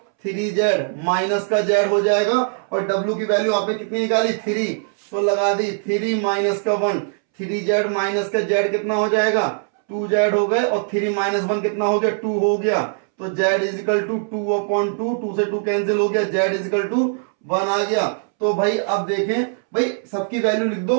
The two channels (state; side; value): silent; left; 65 dB below the other